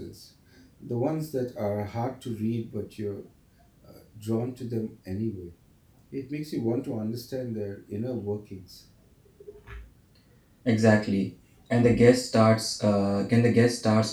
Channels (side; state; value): both; identical; correlation 1.00